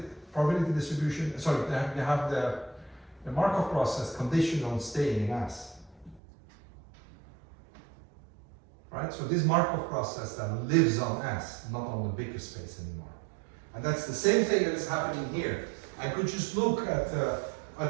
distribution. Sorry, you have the Markov process conditioned on staying in S. Right? So this Markov process then lives on S, not on the bigger space anymore. And that's the same thing that is happening here. I could just look at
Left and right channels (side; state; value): left; drops out; at 6.2 s